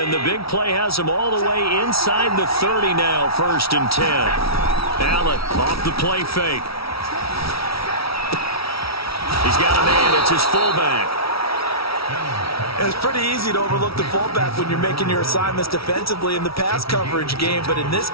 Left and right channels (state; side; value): late; right; 0.76 ms